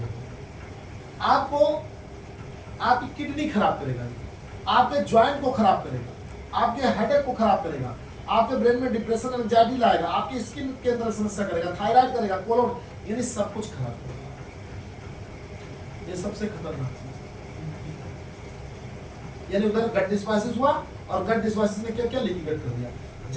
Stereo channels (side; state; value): both; identical; correlation 1.00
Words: होगी। आपको आपकी किडनी खराब करेगा, आपके ज्वाइंट को खराब करेगा, आपके हेडेक को खराब करेगा, आपके ब्रेन में डिप्रेशन एंजाइटी लाएगा, आपकी स्किन के अंदर समस्या करेगा, थायराइड करेगा, कोलोन, यानी सब कुछ खराब करेगा। ये सबसे खतरनाक चीज, यानी उधर गट डिस्बासिस हुआ और गट डिस्बासिस ने क्या क्या लीकी गट कर दिया।